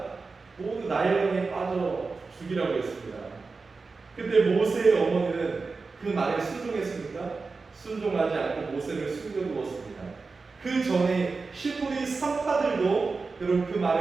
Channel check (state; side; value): quieter; left; 4.2 dB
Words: 모두 나일강에 빠져 죽이라고 했습니다. 그때 모세의 어머니는 그 말에 순종했습니까? 순종하지 않고 모세를 숨겨두었습니다. 그 전에 히브리 산파들도 여러분 그